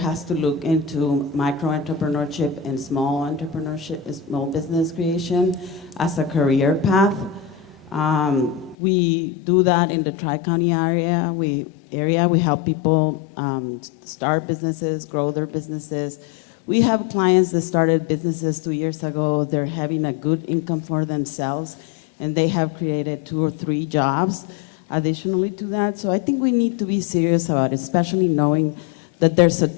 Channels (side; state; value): right; drops out; at 8.8 s